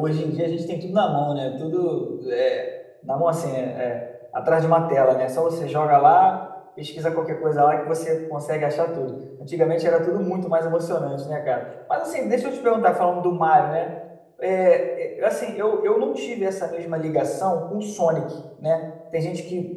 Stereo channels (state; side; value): identical; both; correlation 1.00